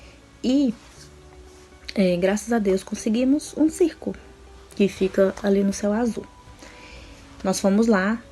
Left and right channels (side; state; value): both; identical; correlation 1.00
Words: E, graças a Deus, conseguimos um circo que fica ali no Céu Azul. Nós fomos lá,